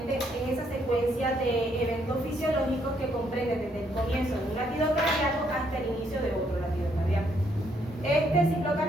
es esa secuencia de eventos fisiológicos que comprende desde el comienzo de un latido cardíaco hasta el inicio de otro latido cardíaco. Este ciclo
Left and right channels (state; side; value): normal; both; correlation 0.72